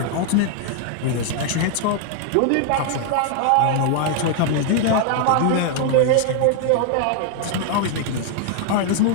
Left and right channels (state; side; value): different; both; correlation 0.00